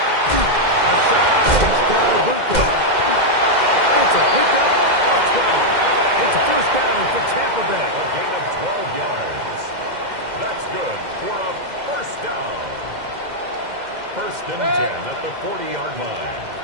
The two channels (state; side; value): late; left; 2.1 ms